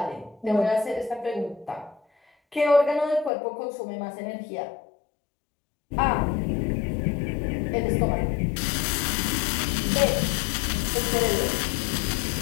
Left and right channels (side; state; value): right; drops out; at 3.3 s